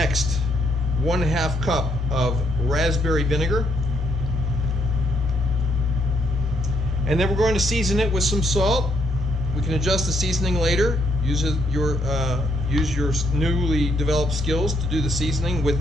1/2 cup of raspberry vinegar. And then we're going to season it with some salt. We can adjust the seasoning later. Use your newly developed skills to do the seasoning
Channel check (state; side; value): normal; both; correlation 0.73